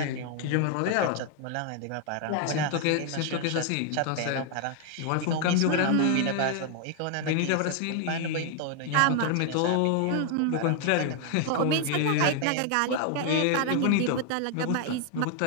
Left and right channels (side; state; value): both; different; correlation 0.00